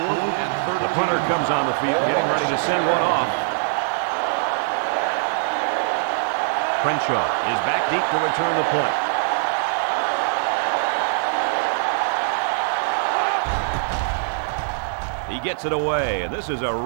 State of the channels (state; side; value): silent; left; 64 dB below the other